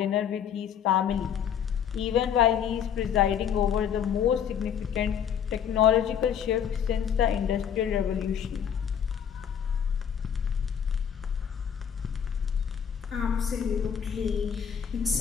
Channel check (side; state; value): right; quieter; 8.3 dB